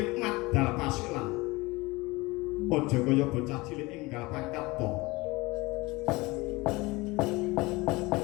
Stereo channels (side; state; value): right; quieter; 22.8 dB